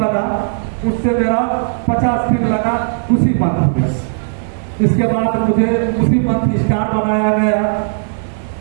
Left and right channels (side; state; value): left; silent; digital silence